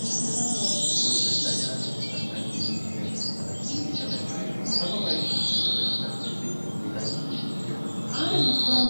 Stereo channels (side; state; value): both; inverted; correlation -1.00